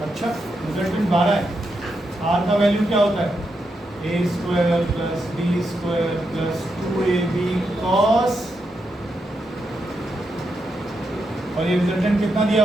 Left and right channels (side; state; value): both; normal; correlation 0.84